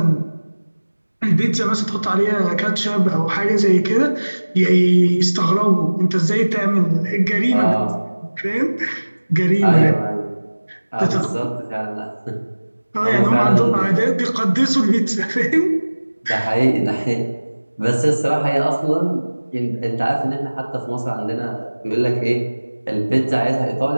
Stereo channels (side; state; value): both; inverted; correlation -1.00